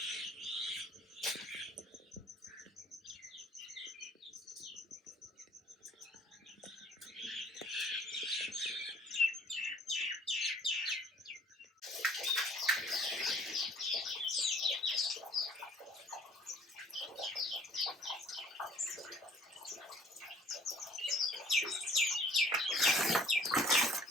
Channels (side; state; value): both; normal; correlation 0.55